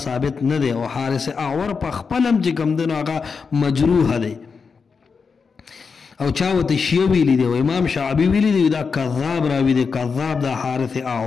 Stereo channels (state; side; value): quieter; right; 5.3 dB